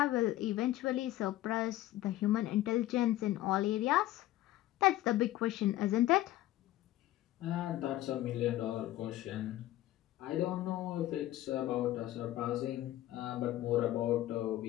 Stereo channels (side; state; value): right; quieter; 14.9 dB